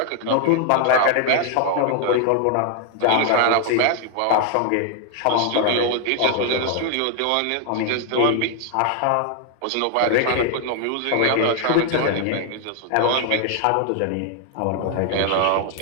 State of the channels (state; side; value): different; both; correlation 0.00